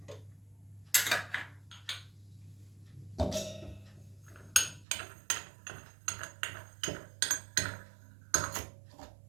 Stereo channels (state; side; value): drops out; left; at 4.9 s